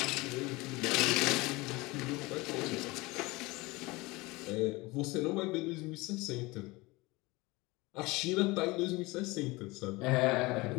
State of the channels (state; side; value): quieter; right; 22.7 dB